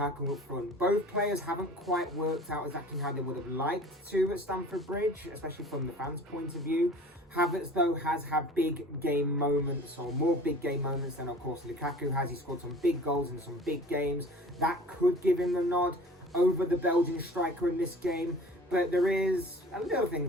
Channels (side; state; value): both; normal; correlation 0.45